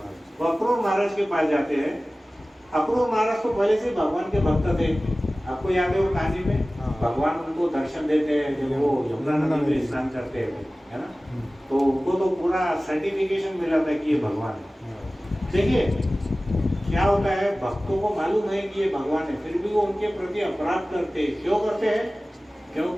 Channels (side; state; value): both; normal; correlation 0.97